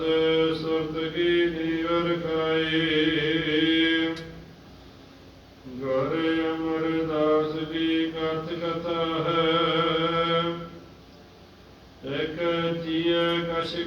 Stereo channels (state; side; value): identical; both; correlation 1.00